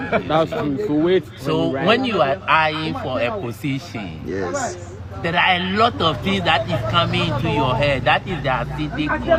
That's true. So wait. So when you are eyeing for a position, yes, there are a lot of things that is coming into your head. That is the acidic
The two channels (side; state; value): both; identical; correlation 1.00